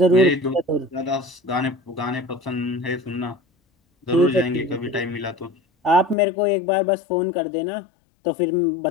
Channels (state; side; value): drops out; right; at 6.2 s